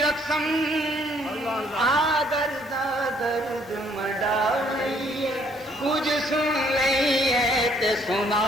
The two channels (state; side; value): normal; both; correlation 0.64